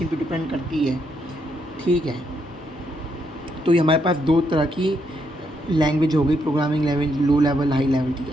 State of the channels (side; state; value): both; normal; correlation 0.77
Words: पे डिपेंड करती है। ठीक है। तो ये हमारे पास दो तरह की लैंग्वेज हो गई, programming language, low level, high level. ठीक